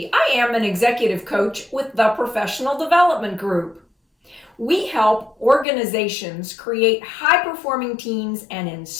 I am an executive coach with the Professional Development Group. We help organizations create high-performing teams and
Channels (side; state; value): right; drops out; at 5.7 s